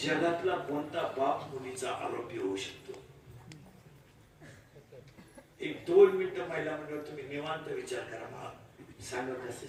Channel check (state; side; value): identical; both; correlation 1.00